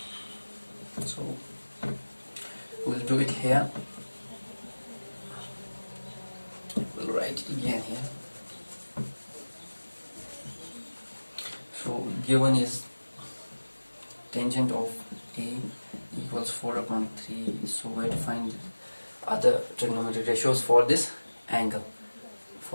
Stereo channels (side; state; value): both; inverted; correlation -1.00